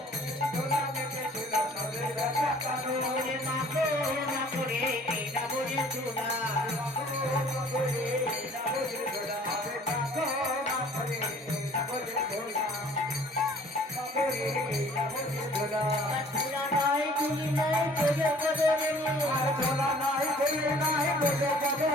ধুলা মেখেছিল নজের বেটা কানো রে মাখো মাখো রে এই নামজের ধুলো মাখো মাখো রে এই নামজের ধুলো মাখো মাখো রে এই নামজের ধুলো মাখো রে এই নামজের ধুলো ধুলা নাই ধুলি নাই পদে পদে রে আর ধুলা নাই ধুলি নাই পদে পদে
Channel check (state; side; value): normal; both; correlation 0.53